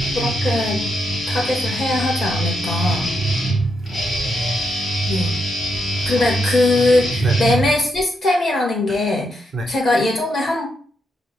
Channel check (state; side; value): normal; both; correlation 0.81